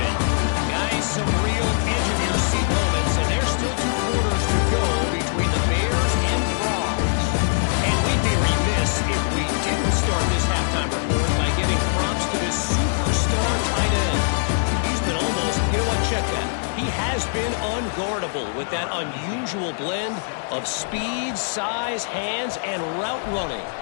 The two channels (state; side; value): silent; right; 59 dB below the other